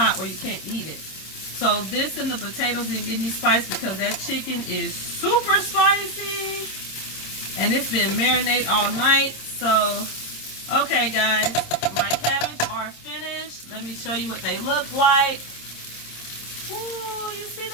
where you can't eat it. So this and the potatoes didn't get any spice because that chicken is super spicy and it's been marinated all night. So okay guys, my cabbage are finished. Let me show you what they look like. Ooh, you see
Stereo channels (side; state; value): right; late; 26 ms